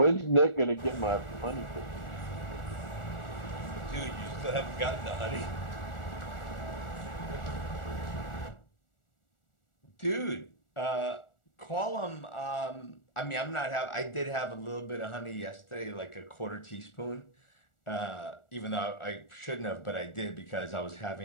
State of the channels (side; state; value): right; late; 1.4 ms